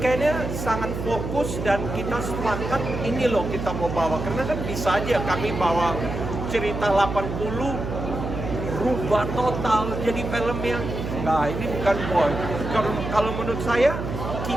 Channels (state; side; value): noise; right; hum, 5 dB below the sound